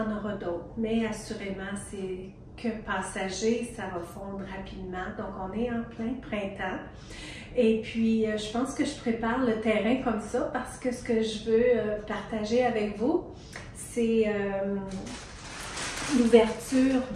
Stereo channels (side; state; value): both; identical; correlation 1.00